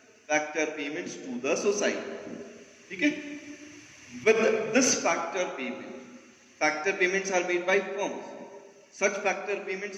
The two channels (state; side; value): identical; both; correlation 1.00